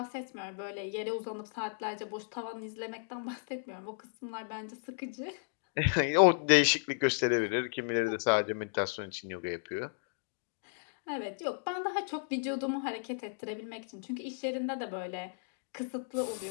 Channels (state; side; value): silent; right; digital silence